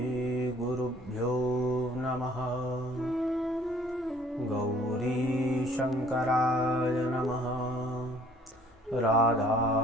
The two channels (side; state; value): both; normal; correlation 0.57